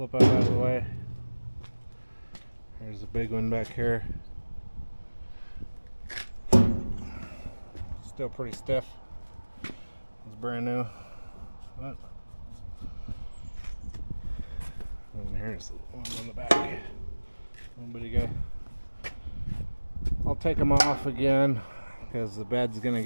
out of the way. There's a big one back here. Still pretty stiff. It's brand new. But and here's one on the back. One bitty guy. I'll take them off again because the bed's gonna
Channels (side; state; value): both; inverted; correlation -1.00